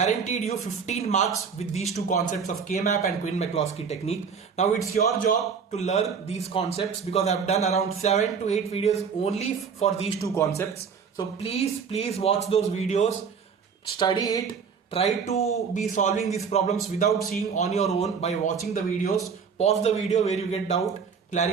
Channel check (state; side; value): quieter; left; 6.2 dB